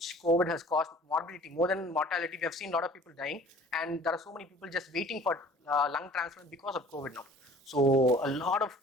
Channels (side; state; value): both; normal; correlation 0.49